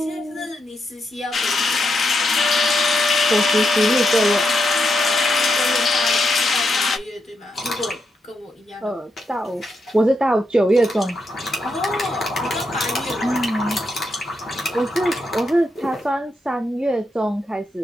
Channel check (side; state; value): both; normal; correlation 0.82